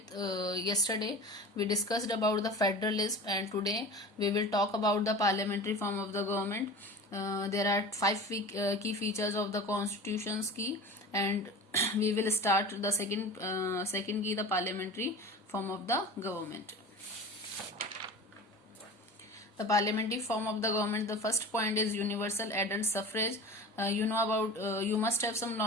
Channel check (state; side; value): normal; both; correlation 0.35